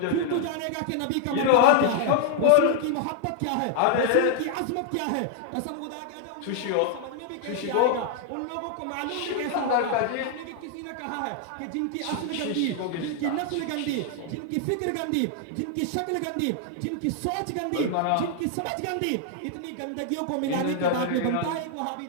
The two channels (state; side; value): different; both; correlation 0.00